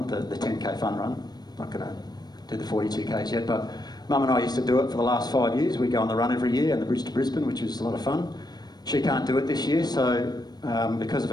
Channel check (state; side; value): late; right; 0.19 ms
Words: the 10k fun run. I'm not going to do the 42k's yet, but Mum and I used to do it for the last 5 years. We go on the run every year and the Bridge to Brisbane, which is a lot of fun. She can't do it this year, so because of